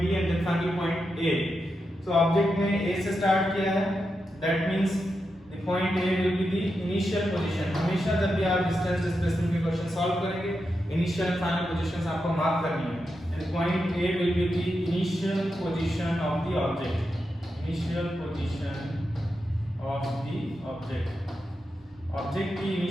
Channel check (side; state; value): both; normal; correlation 0.87